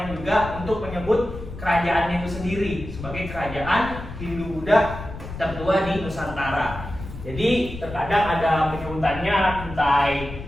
juga untuk menyebut kerajaannya itu sendiri sebagai kerajaan Hindu-Buddha tertua di Nusantara. Jadi terkadang ada penyebutannya Kutai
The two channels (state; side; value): noise; left; rumble, 11 dB below the sound